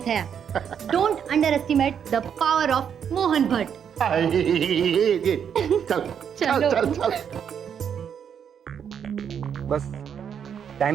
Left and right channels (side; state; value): left; quieter; 8.0 dB